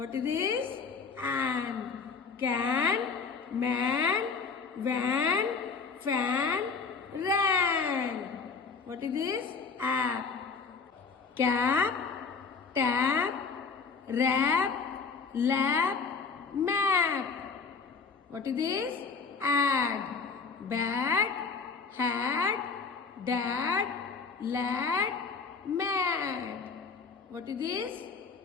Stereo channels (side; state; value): right; quieter; 5.1 dB